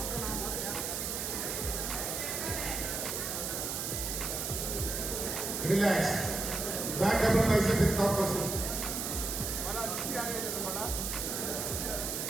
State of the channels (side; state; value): right; noise; hiss, 2 dB below the sound